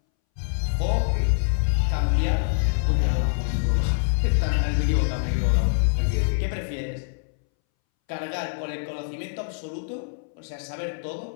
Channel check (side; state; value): right; silent; 62 dB below the other